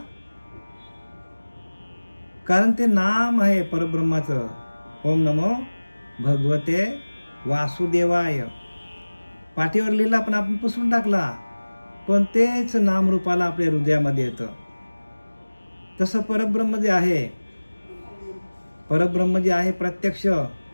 कारण ते नाम आहे परब्रह्माचं, ओम नमो भगवते वासुदेवाय. पाठीवर लिहिला पण आपण पुसून टाकला, पण तेच नामरूपाला आपल्या हृदयामध्ये येतं. तसं परब्रह्म जे आहे, परब्रह्म जे आहे प्रत्यक्ष,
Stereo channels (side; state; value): both; inverted; correlation -1.00